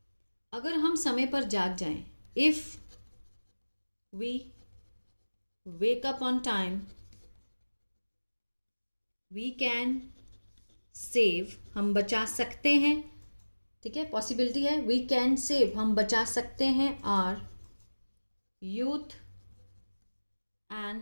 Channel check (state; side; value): inverted; both; correlation -1.00